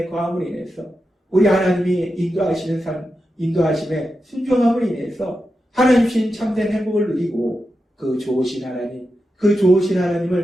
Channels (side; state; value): both; normal; correlation 0.89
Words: 거함으로 인해서 우리 하나님이 인도하시는 삶, 인도하심에 순종함으로 인해서 하나님 주신 참된 행복을 누리고 그 좋으신 하나님, 그 좋으신